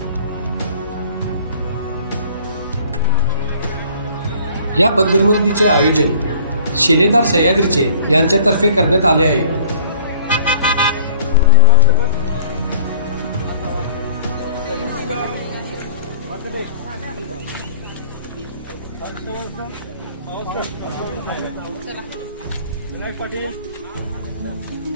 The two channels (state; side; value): inverted; both; correlation -0.51